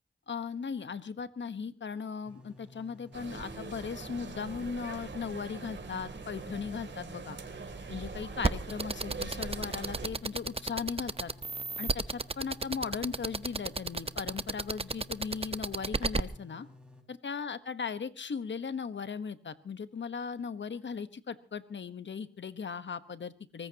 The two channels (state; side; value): normal; both; correlation 0.32